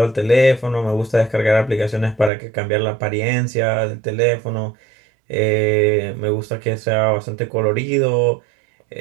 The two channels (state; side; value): drops out; left; at 2.3 s